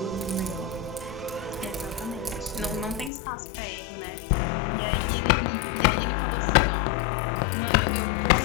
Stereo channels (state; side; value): drops out; right; at 3.1 s